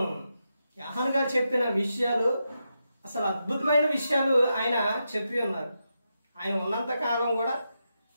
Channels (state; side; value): inverted; both; correlation -0.86